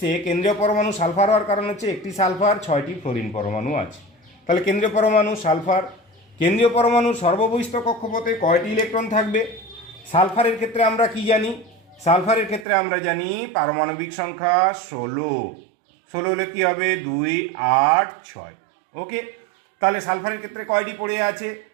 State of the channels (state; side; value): drops out; left; at 12.7 s